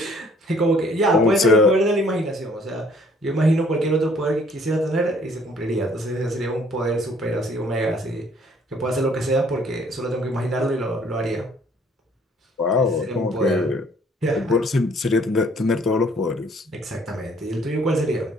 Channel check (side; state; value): both; normal; correlation 0.60